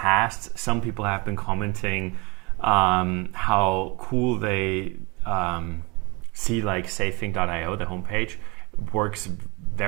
some people have been commenting how cool they see like safing.io, the homepage, works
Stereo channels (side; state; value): left; quieter; 27.5 dB